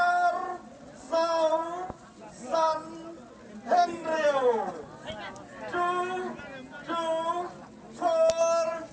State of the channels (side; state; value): both; identical; correlation 1.00